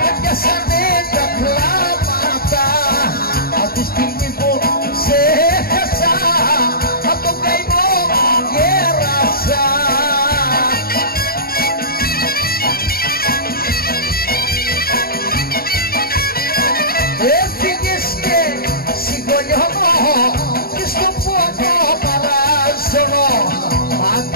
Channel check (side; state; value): right; late; 0.44 ms